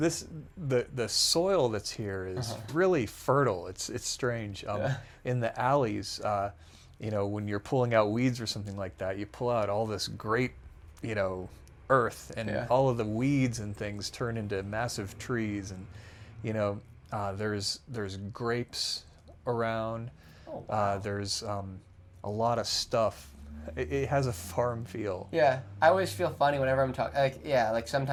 soil that's here is really fertile. It's strange. In the alleys, when you're pulling out weeds or something like that, you pull out all this great, earth, and all of the weeds and things turn into massive trees, and there's grapes around. Oh, wow. There's a lot of stuff. It has a farm feel. Yeah, I always feel funny whenever I'm talking. Like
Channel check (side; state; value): both; identical; correlation 1.00